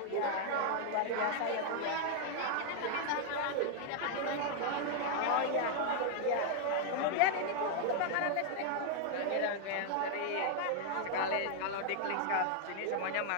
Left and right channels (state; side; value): different; both; correlation 0.00